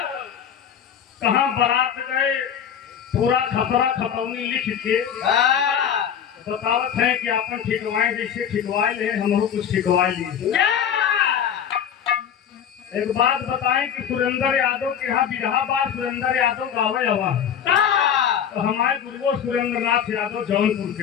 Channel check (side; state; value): right; quieter; 8.5 dB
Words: कहाँ बारात गए पूरा खतरा खतौनी लिख के बतावत है कि अपन ठिकवाए जैसे ठिकवाए ले हम कुछ ठिकवाए लिए। एक बात बताएं कि सुरेंद्र यादव के यहाँ बिरहा बार सुरेंद्र यादव गावे हवा तो हमारे गुरुओं सुरेंद्र नाथ यादव जौनपुर